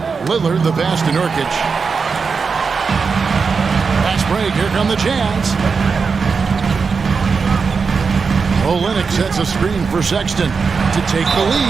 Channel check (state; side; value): quieter; left; 5.2 dB